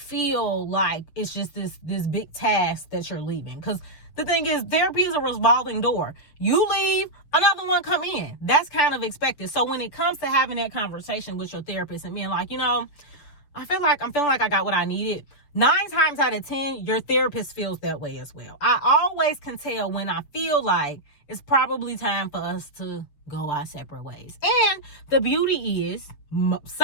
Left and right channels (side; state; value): right; late; 7.1 ms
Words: like it's just this big task that you're leaving. Because the thing is, therapy is a revolving door. You leave, another one come in. That's kind of expected. So when it comes to having that conversation with your therapist and being like, I'm feeling like I got what I needed, 9 times out of 10, your therapist feels that way as well. I always can tell when I feel like it's probably time for us to go our separate ways. And the beauty is,